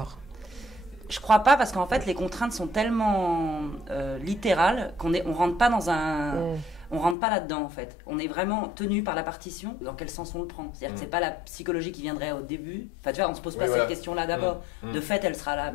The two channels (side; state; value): right; drops out; at 7.2 s